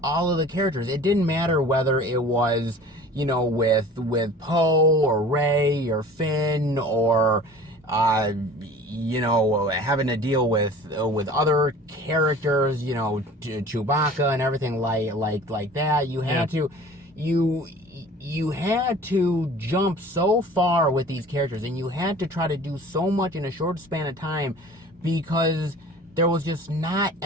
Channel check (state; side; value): normal; both; correlation 0.44